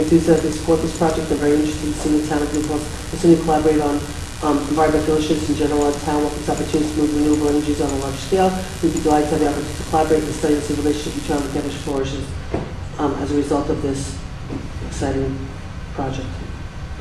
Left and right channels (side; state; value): both; identical; correlation 1.00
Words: support this project and are very interested in seeing the town of New Paltz continue to collaborate on environmental issues in general. Our town welcomes opportunities to move renewable energies on a large scale. We'd be delighted to have the opportunity to collaborate and study the relationship between the campus flourishes as a result of this exciting project.